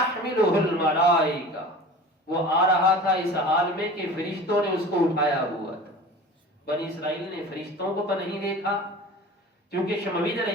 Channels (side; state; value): both; normal; correlation 0.39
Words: الملائکہ، وہ آ رہا تھا اس حال میں کہ فرشتوں نے اس کو اٹھایا ہوا تھا۔ بنی اسرائیل نے فرشتوں کو تو نہیں دیکھا، کیونکہ شمویل علیہ